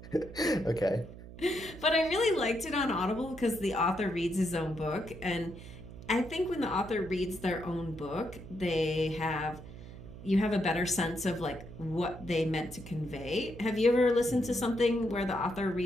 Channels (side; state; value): right; noise; hum, 14 dB below the sound